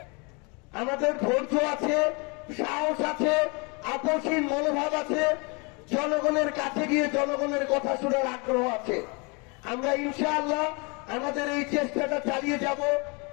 আমাদের ধৈর্য আছে, সাহস আছে, আপসহীন মনোভাব আছে, জনগণের কাছে গিয়ে জনগণের কথা শোনার আগ্রহ আছে। আমরা ইনশাআল্লাহ আমাদের এই চেষ্টাটা চালিয়ে যাব।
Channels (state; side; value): quieter; right; 30.7 dB